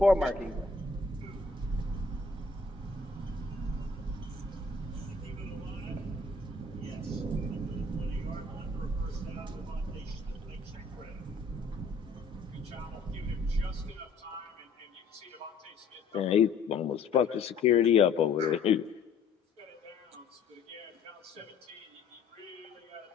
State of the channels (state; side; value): quieter; right; 4.2 dB